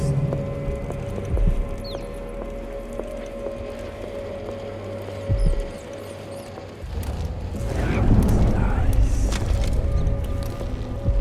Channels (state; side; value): identical; both; correlation 1.00